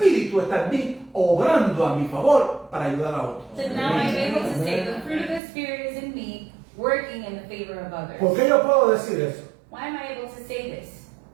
está en mí, obrando a mi favor para ayudar a otros. then now I'm able to say the fruit of the Spirit is in me, working in the favor of others. ¿Por qué yo puedo decir eso? Why am I able to say this?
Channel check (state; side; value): drops out; left; at 5.4 s